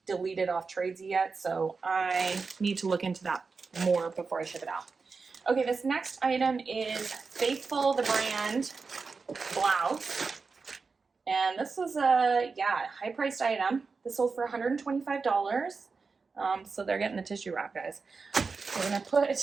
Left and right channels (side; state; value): left; quieter; 4.6 dB